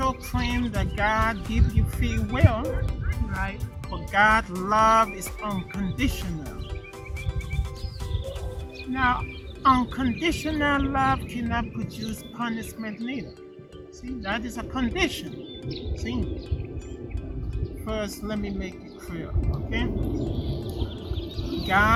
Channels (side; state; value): both; identical; correlation 1.00